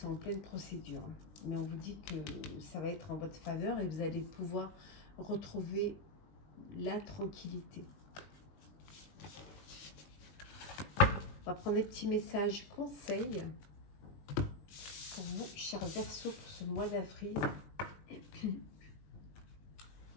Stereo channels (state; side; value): late; right; 20 ms